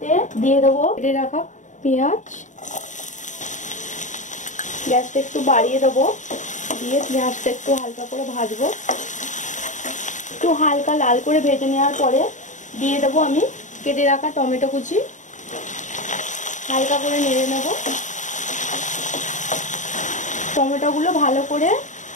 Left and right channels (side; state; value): right; late; 0.36 ms